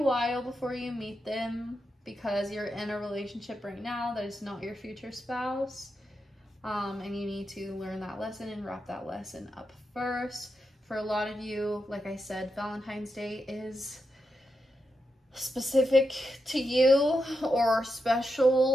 before you meet them because you're in a relationship right now that is not your future spouse. And you need to learn that lesson and wrap that lesson up first. For a lot of you, like I said, Valentine's Day is specific to you or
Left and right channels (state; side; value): normal; both; correlation 0.86